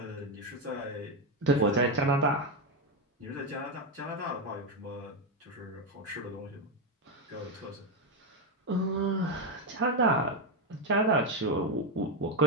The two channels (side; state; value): both; normal; correlation 0.08